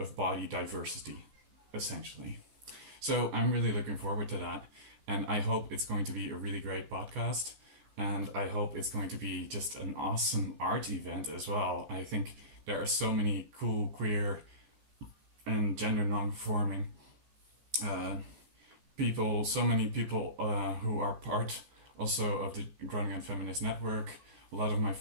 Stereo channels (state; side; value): late; left; 14 ms